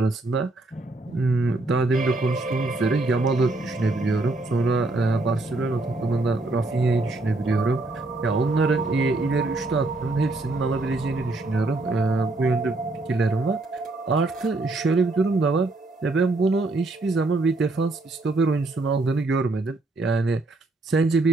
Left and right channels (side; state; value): left; quieter; 3.0 dB